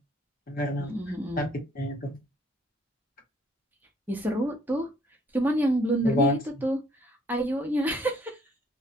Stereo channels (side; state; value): both; normal; correlation 0.63